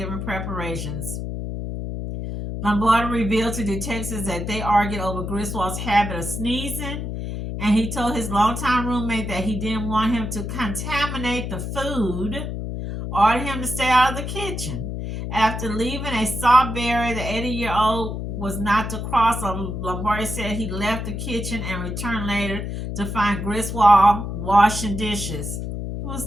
preparations. Lombardi revealed to detectives that they argued over Griswold's habit of sneezing, and he told his longtime roommate that he didn't want him to contaminate the food, ordered him to stay out of the kitchen. After leaving a sawberry, the 80-year-old was not to cross. Lombardi said he left the kitchen and returned later to find Griswold washing dishes. He was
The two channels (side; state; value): left; noise; hum, 5 dB below the sound